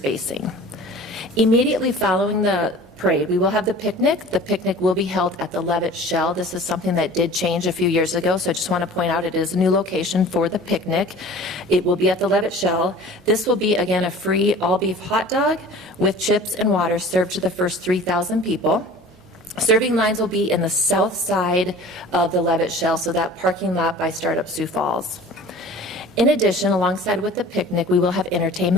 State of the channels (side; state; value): both; normal; correlation 0.43